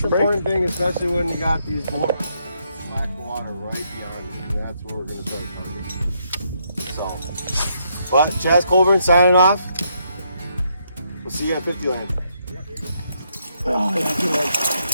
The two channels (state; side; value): inverted; both; correlation -0.76